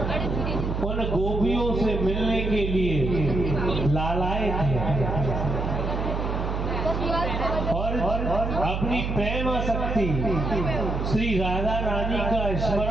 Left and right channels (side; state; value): right; noise; hum, 2 dB below the sound